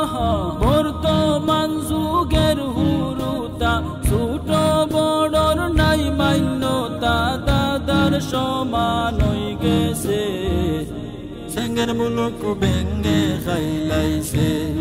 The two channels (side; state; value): both; identical; correlation 1.00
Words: বর্তমান যুগের হুরুতা ছোট বড়র নাই মান্যতা দাদার সমান হয়ে গেছে সেঙ্গের মুলুক বেঙ্গে খাইলাইছে